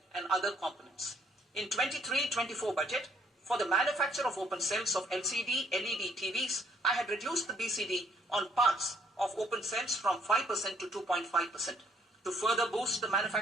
and other components. In 23-24 budget, for the manufacture of open cells of LCD, LED TVs, I had reduced the BCD on parts of open cells from 5% to 2.5%. To further boost the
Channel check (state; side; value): normal; both; correlation 0.65